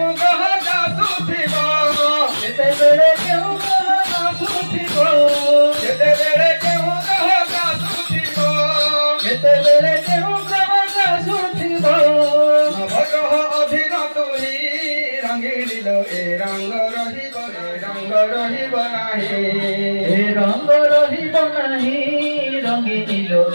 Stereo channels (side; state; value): both; inverted; correlation -1.00